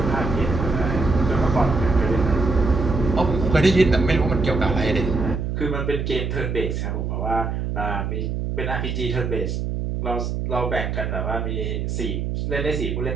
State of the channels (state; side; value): noise; right; hum, 2 dB below the sound